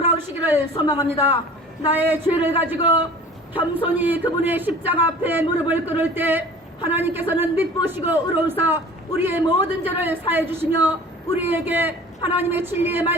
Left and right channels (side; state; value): both; normal; correlation 0.44